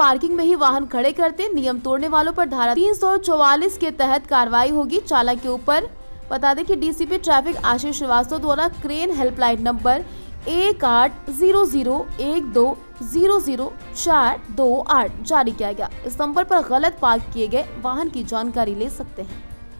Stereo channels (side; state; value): both; inverted; correlation -1.00